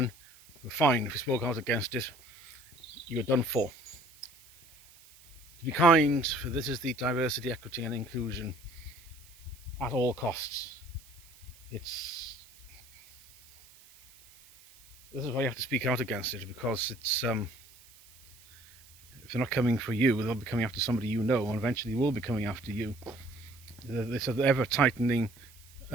you were fine. If you spoke out against it, you were done for. To be kind, for this is the diversity, equity and inclusion at all costs. This is why you have to speak out against it, because it's if they're not coming for you, they'll be coming after somebody you know, and eventually will be coming after you. This ever tightening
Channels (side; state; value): right; noise; hiss, 24 dB below the sound